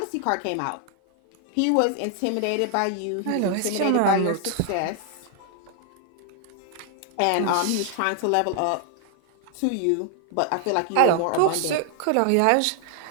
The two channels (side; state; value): both; different; correlation 0.00